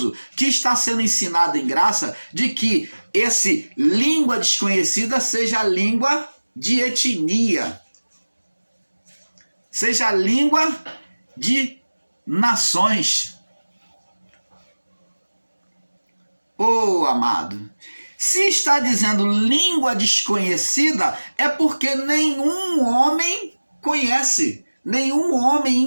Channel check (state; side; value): inverted; both; correlation -1.00